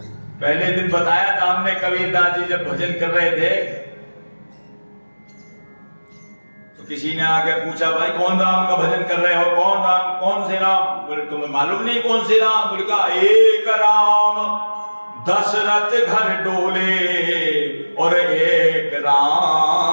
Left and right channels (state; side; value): inverted; both; correlation -1.00